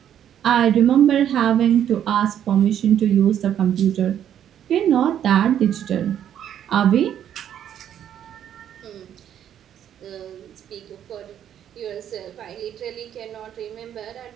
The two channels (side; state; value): left; quieter; 10.0 dB